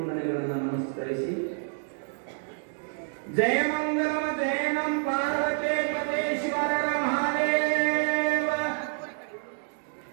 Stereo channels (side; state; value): left; silent; digital silence